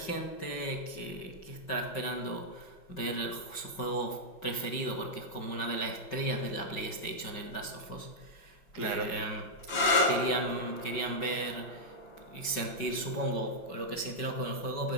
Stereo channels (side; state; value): right; late; 5.3 ms